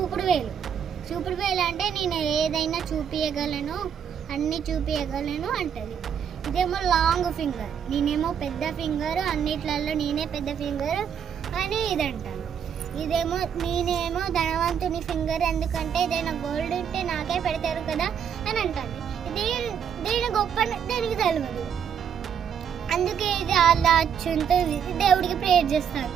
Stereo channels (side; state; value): left; quieter; 8.0 dB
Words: వేలు. చూపుడు వేలు అంటే నేను ఏదైనా చూపించగలను, అన్నీ చూపించగలను అంటది. ఇదేమో లాంగ్ ఫింగర్, నేనేమో పెద్ద ఫింగర్, అన్నిట్లలో నేనే పెద్ద ఫింగర్ అని ఇది అంటాను. నేనేమో ధనవంతుని ఫింగర్, ఎందుకంటే ఏదైనా గోల్డ్ ఉంటే నాకే పెడతారు కదా అని అంటాను. దీని గొప్ప దానికి తెలియదు, అందుకే ఇది అలా ఉంటుంది. దేవుడికి ప్రేయర్ చేస్తారు,